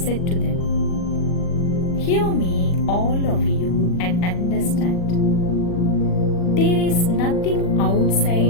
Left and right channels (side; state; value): right; late; 40 ms